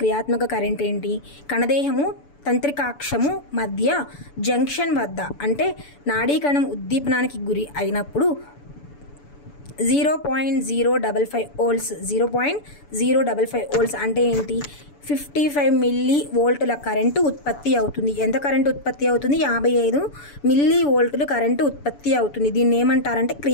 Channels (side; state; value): right; late; 6.9 ms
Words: క్రియాత్మక కరెంట్ ఏంటి? కణదేహము తంత్రికాక్షము మధ్య జంక్షన్ వద్ద అంటే నాడీ కణం ఉద్దీపనానికి గురి అయినప్పుడు 0.055 వోల్ట్స్ 0.055 వోల్ట్స్ అంటే ఏంటి? 55 మిల్లీ వోల్టుల కరెంటు ఉత్పత్తి అవుతుంది. ఎంత కరెంటు ఉత్పత్తి అవుతుంది? 55 మిల్లీ వోల్టులు కరెంటు ఉత్పత్తి అవుతుంది. దీన్ని ఏమంటారంటే